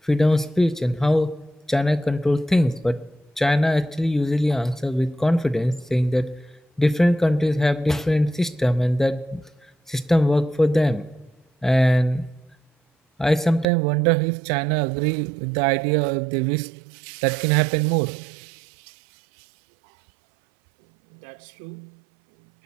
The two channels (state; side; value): drops out; left; at 13.7 s